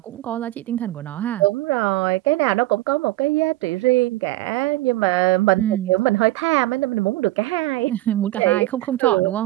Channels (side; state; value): left; quieter; 17.6 dB